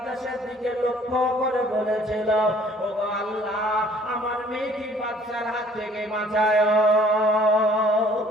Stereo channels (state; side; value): normal; both; correlation 0.56